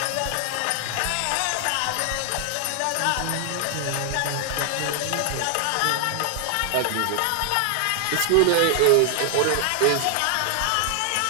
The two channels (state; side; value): different; both; correlation 0.00